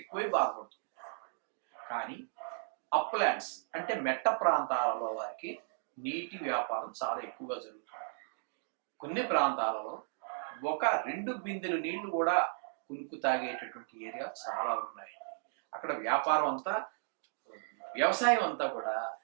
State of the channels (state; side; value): silent; left; digital silence